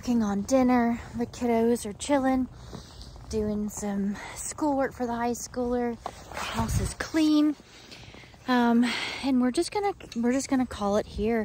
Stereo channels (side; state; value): both; identical; correlation 1.00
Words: on dinner. The kiddos are chilling, doing some schoolwork for the high schooler. The house is clean. And we're just gonna call it